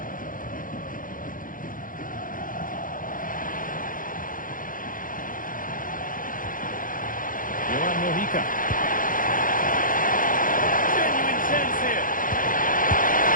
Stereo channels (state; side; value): late; right; 0.40 ms